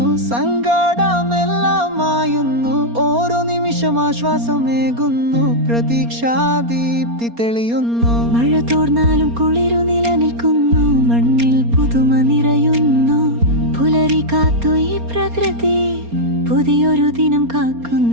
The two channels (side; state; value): left; late; 4.3 ms